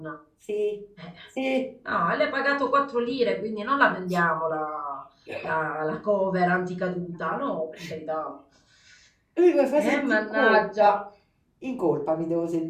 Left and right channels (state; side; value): identical; both; correlation 1.00